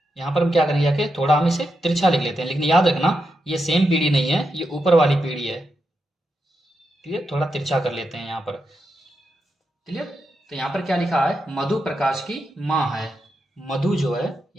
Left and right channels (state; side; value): normal; both; correlation 0.86